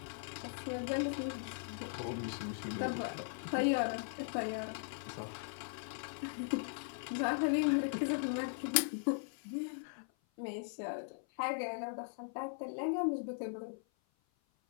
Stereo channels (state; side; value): silent; right; 52 dB below the other